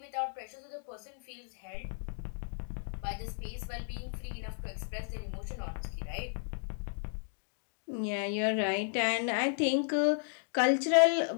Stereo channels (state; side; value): silent; right; digital silence